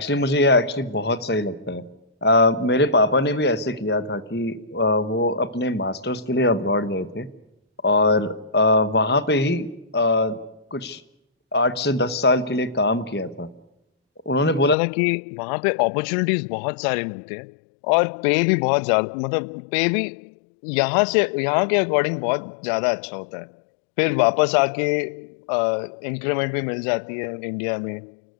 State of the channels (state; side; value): drops out; right; at 14.8 s